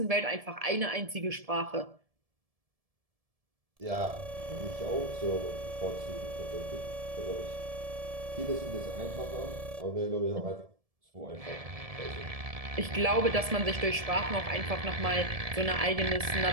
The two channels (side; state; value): left; late; 1.7 ms